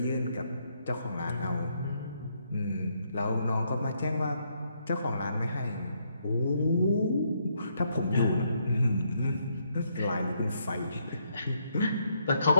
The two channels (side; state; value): both; inverted; correlation -0.74